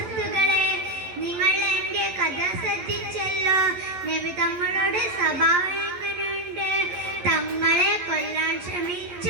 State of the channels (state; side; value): late; left; 11 ms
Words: നിങ്ങൾ എൻ്റെ കഥ ശ്രദ്ധിച്ചല്ലോ. നബി തങ്ങളുടെ സ്വഭാവം എങ്ങനെയുണ്ട്? തങ്ങളെ കൊല്ലാൻ ശ്രമിച്ച